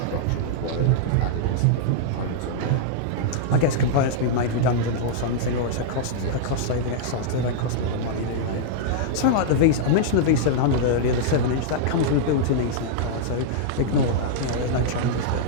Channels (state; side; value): different; both; correlation -0.02